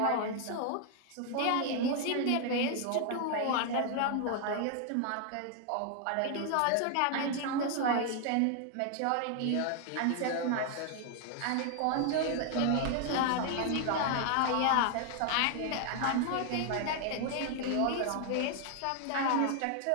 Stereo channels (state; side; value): different; both; correlation 0.00